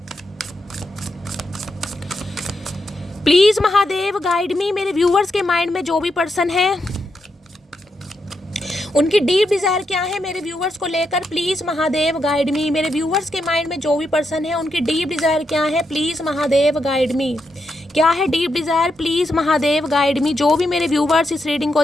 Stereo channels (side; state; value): both; normal; correlation 0.83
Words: प्लीज महादेव गाइड मी। मेरे व्यूवर्स के माइंड में जो भी पर्सन है उनकी डीप डिजायर क्या है मेरे व्यूवर्स को लेकर, प्लीज महादेव गाइड मी। मेरे व्यूवर्स के माइंड में जो भी पर्सन है उनकी डीप डिजायर क्या है, प्लीज महादेव गाइड मी। क्या है deep Dzire, please Mahadev guide मी। जो भी मेरे व्यूवर्स इस रीडिंग को